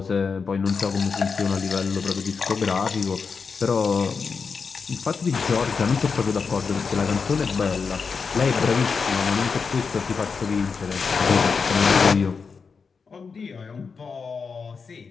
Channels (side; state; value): right; quieter; 5.3 dB